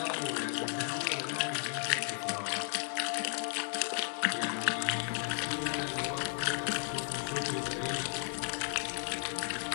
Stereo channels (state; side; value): silent; right; 55 dB below the other